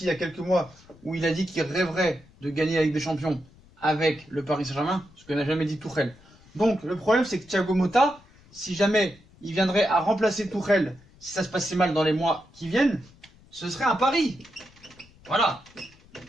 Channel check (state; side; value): noise; left; rumble, 27 dB below the sound